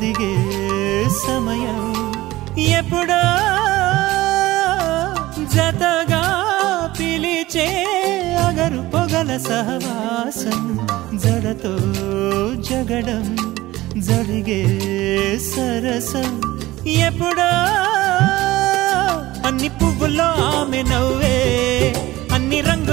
సమయం ఎప్పుడో జతగా పిలిచే అగరు పొగల సహవాసం జడతో జగడం జరిగే సరసం ఎప్పుడో అన్ని పువ్వుల్లో ఆమె నవ్వే అన్ని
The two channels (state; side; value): quieter; left; 17.6 dB